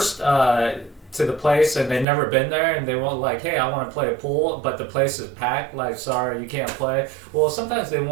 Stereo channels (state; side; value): drops out; left; at 2.1 s